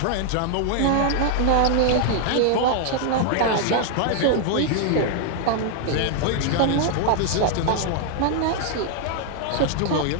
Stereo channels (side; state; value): both; different; correlation 0.00